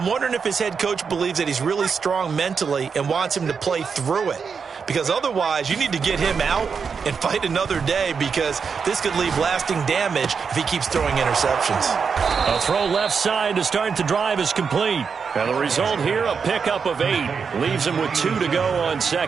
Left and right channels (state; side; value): quieter; left; 5.9 dB